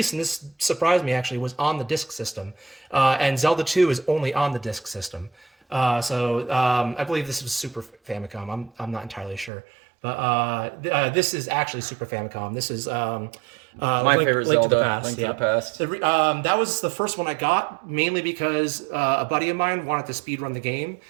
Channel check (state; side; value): drops out; left; at 9.5 s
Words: and this surprised me actually, was on the disc system. And Zelda 2 is only on the disc system. So I believe this was Super Famicom. I'm not entirely sure. But this is actually Super Famicom. This is my favorite Zelda, Link to the Past. Link to the Past. So, that was the first one I got, mainly because a buddy of mine wanted to speedrun the game.